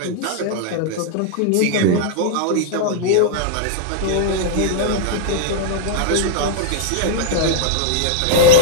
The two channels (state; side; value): different; both; correlation -0.01